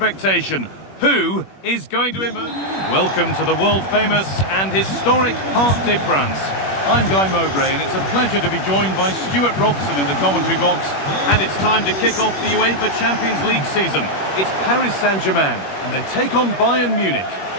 Who is going to emerge? Welcome to the world-famous and historic Parc des Princes. I'm Guy Mowbray, and it's a pleasure to be joined by Stuart Robson in the commentary box. And it's time to kick off the UEFA Champions League season. It's Paris Saint-Germain, and they take on Bayern Munich.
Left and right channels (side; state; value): right; late; 21 ms